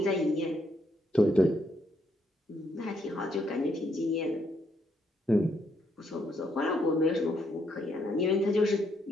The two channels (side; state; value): both; normal; correlation 0.74